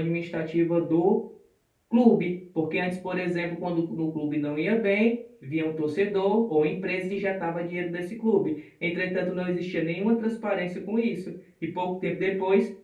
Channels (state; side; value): identical; both; correlation 1.00